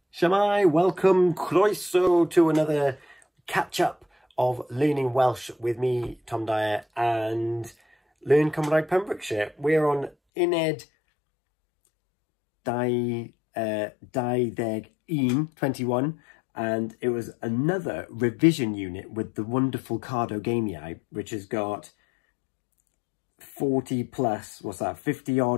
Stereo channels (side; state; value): right; drops out; at 10.1 s